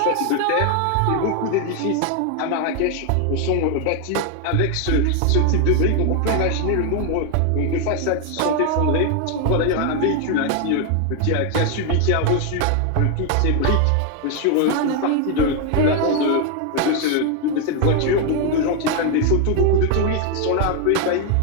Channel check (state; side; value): different; both; correlation 0.01